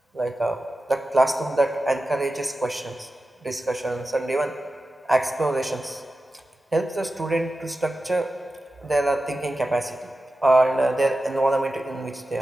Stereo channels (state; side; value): normal; both; correlation 0.93